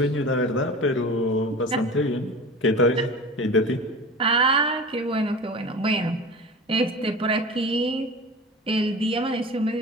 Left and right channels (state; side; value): normal; both; correlation 0.34